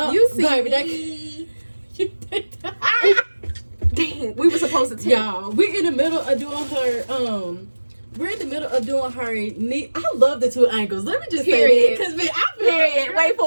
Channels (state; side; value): inverted; both; correlation -1.00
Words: see baby, me. Dang, we were supposed to tell y'all. We're in the middle of doing her we're in the middle of doing her knee. I love the two angles. Let me just say Period. that. Because man, I feel Period. like, Wait for